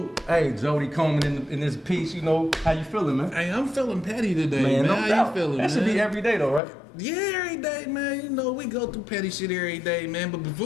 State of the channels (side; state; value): right; drops out; at 6.6 s